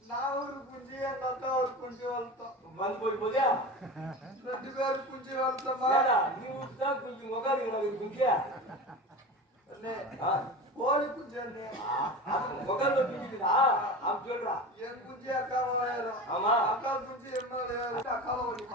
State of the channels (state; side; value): normal; both; correlation 0.30